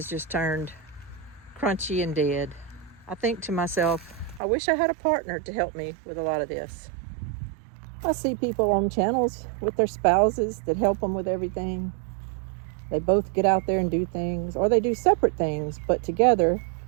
just turned crunchy and dead, I think to myself, I wish I had a partner to help me with a lot of this. I see people on channels with their spouses that help them with everything. They both get out there and do things, or they do separate things, but together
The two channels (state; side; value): drops out; left; at 4.4 s